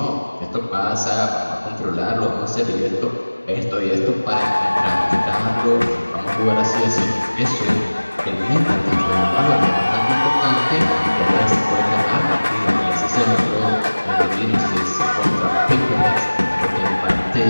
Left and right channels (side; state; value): both; inverted; correlation -1.00